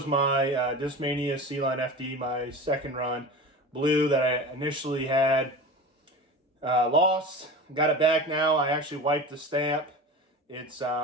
my Discmania C-Line FD, my second run blue that I initially had lost. Got it back now. I actually wiped the stamp. It's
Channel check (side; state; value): both; normal; correlation 0.32